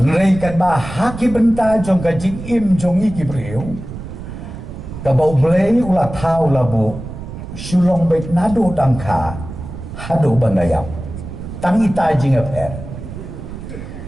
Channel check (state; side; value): noise; right; rumble, 10 dB below the sound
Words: Reikan bah haki benta jong ka jing im jong iki priu ka bau blei ulah tau labu sulong baik nado tangka hado bandayap tangi ta jing aper